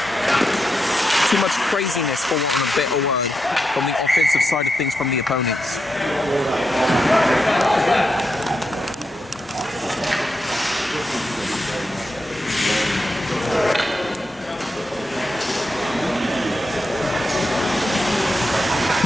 too much craziness, for want of a better word, from the offensive side of things from the opponents.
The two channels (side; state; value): both; normal; correlation 0.86